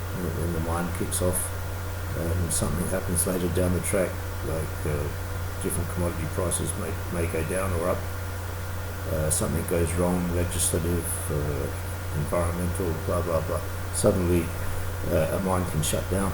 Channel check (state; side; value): identical; both; correlation 1.00